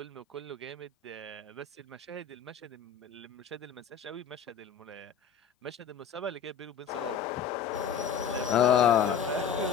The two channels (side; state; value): right; quieter; 7.2 dB